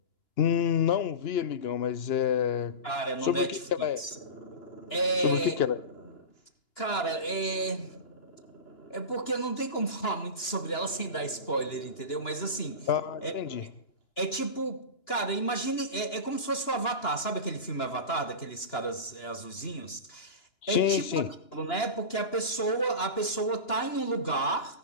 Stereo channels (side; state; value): right; late; 2.9 ms